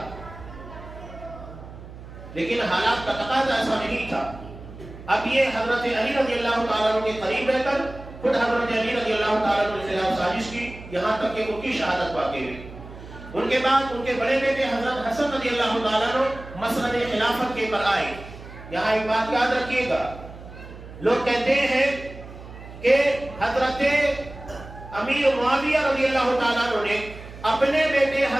لیکن حالات کا تقاضا ایسا نہیں تھا۔ اب یہ حضرت علی رضی اللہ تعالیٰ عنہ کے قریب رہ کر خود حضرت علی رضی اللہ تعالیٰ عنہ کے خلاف سازش کی، یہاں تک کہ ان کی شہادت واقع ہوئی۔ ان کے بعد ان کے بڑے بیٹے حضرت حسن رضی اللہ تعالیٰ عنہ مسند خلافت کے پر آئے۔ یہاں ایک بات یاد رکھیے گا، لوگ کہتے ہیں کہ حضرت امیر معاویہ رضی اللہ تعالیٰ عنہ نے اپنے بیٹے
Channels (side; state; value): right; noise; hum, 15 dB below the sound